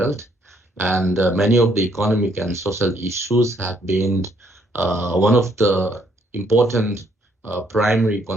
And many of the economic and social issues have been one of the important primary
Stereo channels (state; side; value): normal; both; correlation 0.69